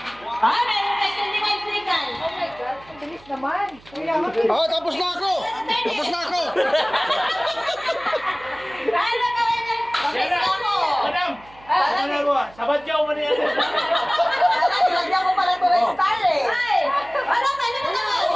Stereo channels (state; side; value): noise; right; hum, 25 dB below the sound